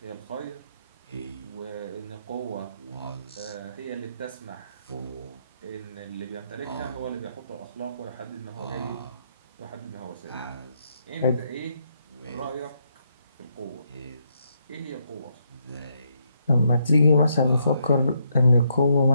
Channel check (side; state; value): both; inverted; correlation -0.76